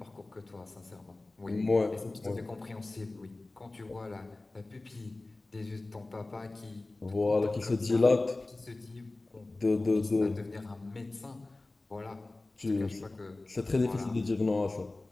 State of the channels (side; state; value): right; quieter; 3.0 dB